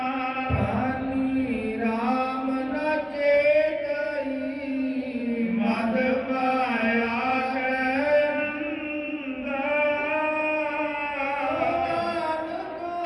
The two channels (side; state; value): both; identical; correlation 1.00